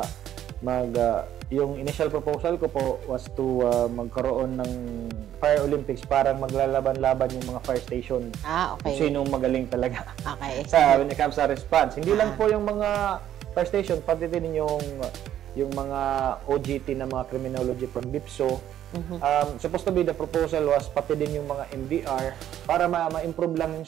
yung initial proposal ko po was to magkaroon ng Fire Olympics, parang maglalaban-laban yung mga fire station. Kung sinong magaling talaga when it comes sa response. Hindi lang po yung mga fire station, pati din yung mga OGT na mga criminology from BIPSO. Supposed to be the proposal was pati din yung mga MDR para ma-improve lang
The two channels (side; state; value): left; quieter; 11.2 dB